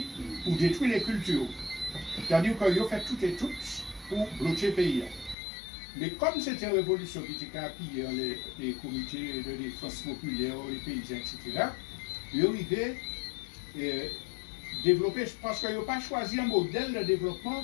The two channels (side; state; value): right; drops out; at 5.4 s